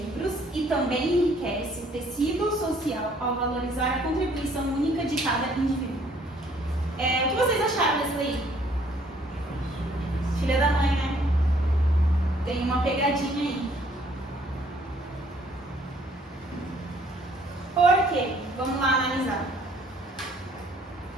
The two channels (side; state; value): both; normal; correlation 0.62